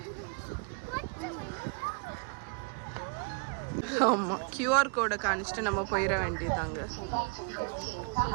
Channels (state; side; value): quieter; left; 36.6 dB